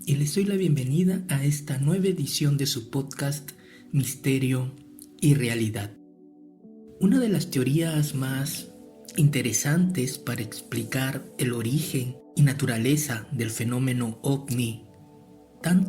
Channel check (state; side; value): identical; both; correlation 1.00